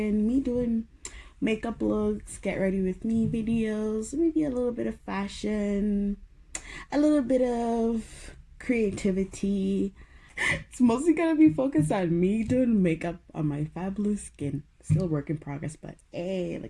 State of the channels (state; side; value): identical; both; correlation 1.00